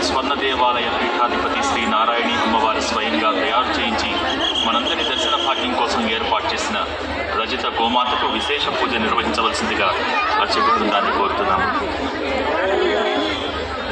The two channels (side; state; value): both; identical; correlation 1.00